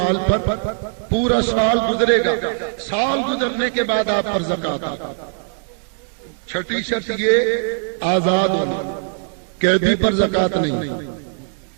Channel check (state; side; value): silent; left; digital silence